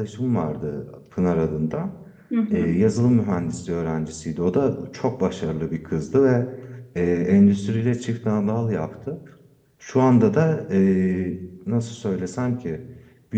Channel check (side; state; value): both; identical; correlation 1.00